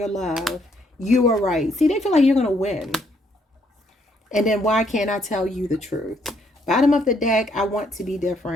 love. You are right. See, they feel like you're going to win. And then why can't I tell you the truth? Bottom of the deck, I want to be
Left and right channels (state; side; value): normal; both; correlation 0.70